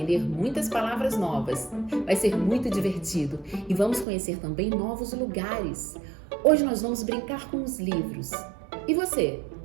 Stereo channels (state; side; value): drops out; left; at 4.0 s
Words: muitas palavras novas. Vai ser muito divertido e vamos conhecer também novos lugares. Hoje nós vamos brincar com os livros. E você,